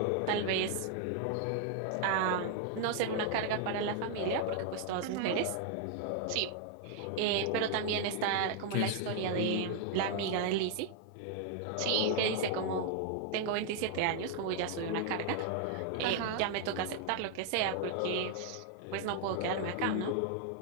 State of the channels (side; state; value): both; different; correlation 0.00